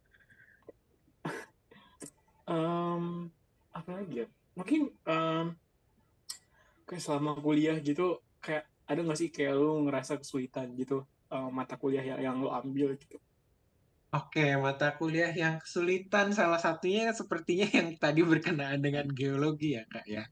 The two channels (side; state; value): both; identical; correlation 1.00